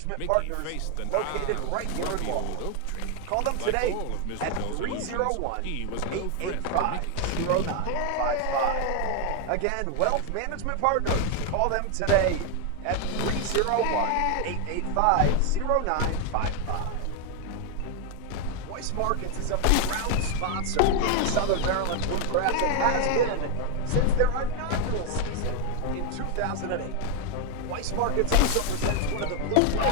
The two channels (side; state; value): both; different; correlation 0.01